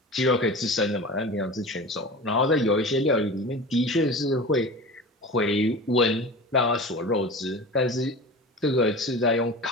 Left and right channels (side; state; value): both; normal; correlation 0.34